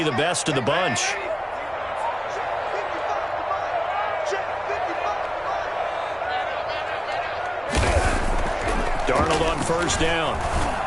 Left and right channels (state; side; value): identical; both; correlation 1.00